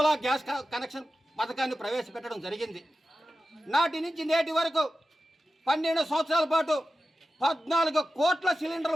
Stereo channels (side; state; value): both; normal; correlation 0.93